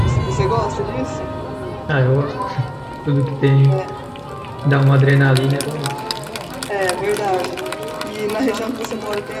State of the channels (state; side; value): identical; both; correlation 1.00